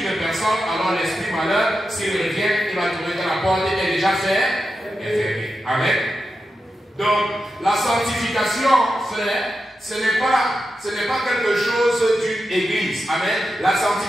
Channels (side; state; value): both; normal; correlation 0.89